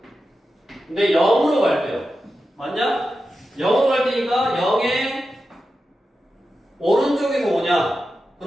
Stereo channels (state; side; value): normal; both; correlation 0.91